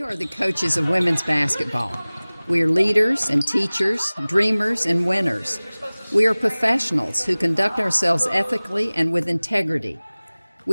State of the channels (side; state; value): both; inverted; correlation -1.00